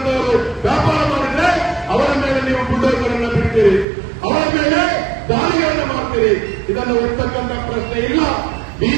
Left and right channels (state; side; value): drops out; left; at 3.9 s